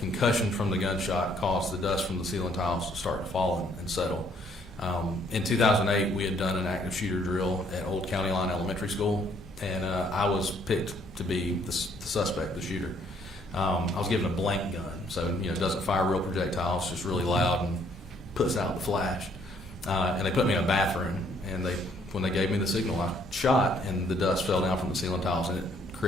from the gunshot caused the dust from the ceiling tiles to start to fall and settle. In 2008, we had done an active shooter drill at Old County Line Elementary School, and I was picked to be the suspect, the shooter. I was given a blank gun, so it doesn't fire real projectiles, just really loud and puts out the flash. And they put me in a bathroom, and when they gave me the signal, I shot, and the dust fell down from the ceiling tiles, and it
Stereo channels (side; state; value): both; normal; correlation 0.66